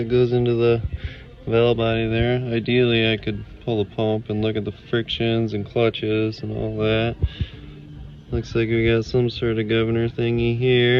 goes into the valve body there. Ideally I could pull the pump and look at the frictions and clutches and all that. Looks like we got some sort of governor thingy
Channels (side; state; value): both; identical; correlation 1.00